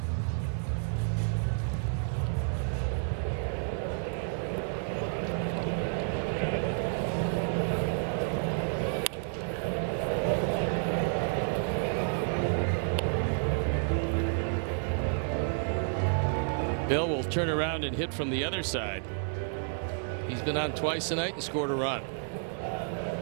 Bill will turn around and hit from the other side. He's been on twice tonight and scored a run.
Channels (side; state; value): left; silent; 57 dB below the other